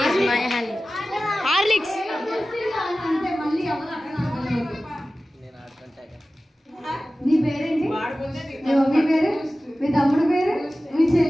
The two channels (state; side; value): normal; both; correlation 0.96